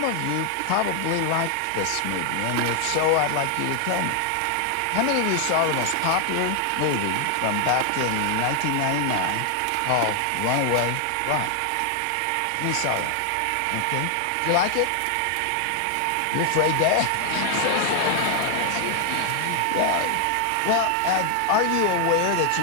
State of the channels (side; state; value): both; different; correlation 0.00